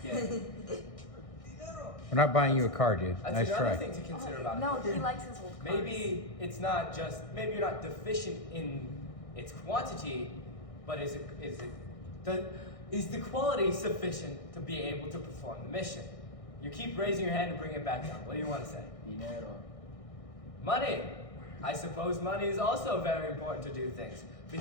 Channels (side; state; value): right; late; 1.6 ms